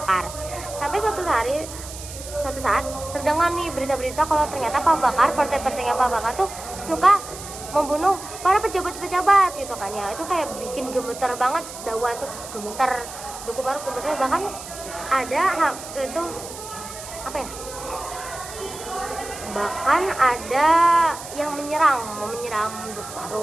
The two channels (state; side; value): noise; right; hiss, 12 dB below the sound